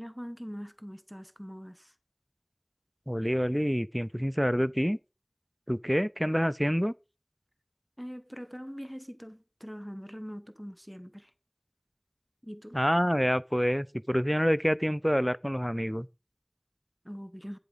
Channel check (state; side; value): identical; both; correlation 1.00